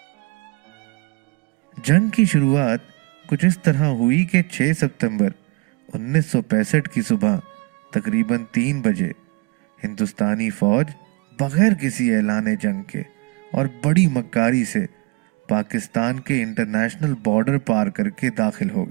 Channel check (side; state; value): left; quieter; 24.2 dB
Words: جنگ کی شروعات کچھ اس طرح ہوئی کہ 6 ستمبر 1965 کی صبح تقریباً 3 بجے ہندوستانی فوج بغیر کسی اعلان جنگ کے اور بڑی مکاری سے پاکستان کے انٹرنیشنل بارڈر پار کر کے داخل ہو